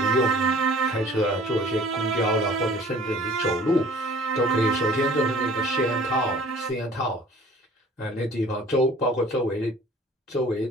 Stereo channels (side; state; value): both; normal; correlation 0.51